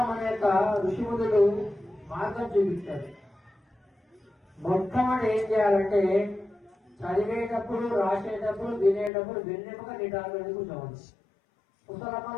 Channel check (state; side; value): drops out; right; at 9.1 s